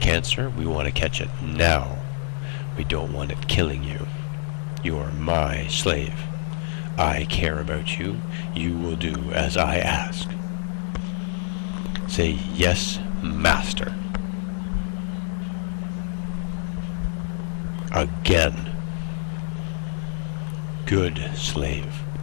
we want to catch it now. We don't want it killing you. You are my slave. I care about you. You will do as I ask. Say, yes, master. Again. Good slave.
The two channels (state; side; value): silent; right; 61 dB below the other